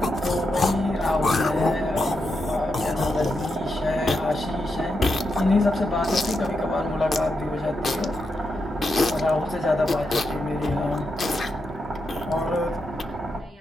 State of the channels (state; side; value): normal; both; correlation 0.85